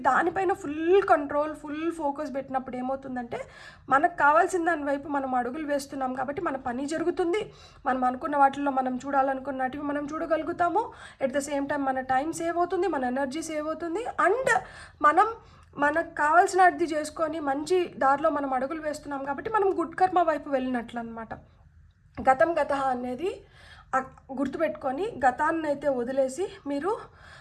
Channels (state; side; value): identical; both; correlation 1.00